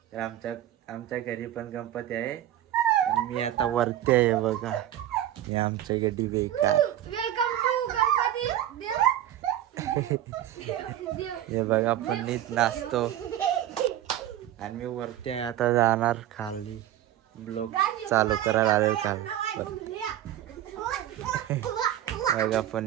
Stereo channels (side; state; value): left; quieter; 12.4 dB